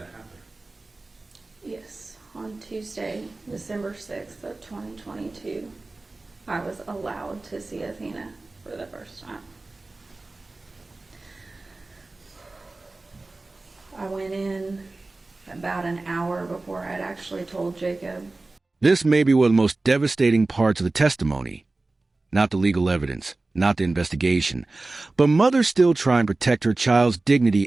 happen? Yes. On Tuesday, December 6th of 2022, I was allowed to see Athena for the first time. I went in about an hour before I'd actually told Jacob. This may be one of the most devastating parts of the testimony. Not the legal evidence, not the investigation, but mother still trying to protect her child's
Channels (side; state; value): left; quieter; 3.2 dB